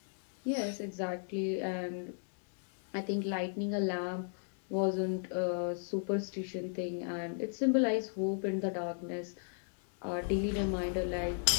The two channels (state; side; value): silent; right; digital silence